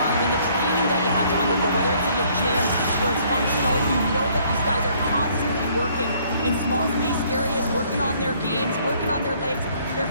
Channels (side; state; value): both; inverted; correlation -0.62